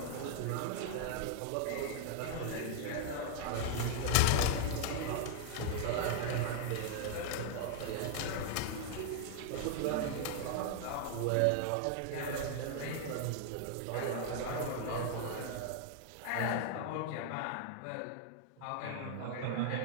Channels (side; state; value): both; different; correlation 0.00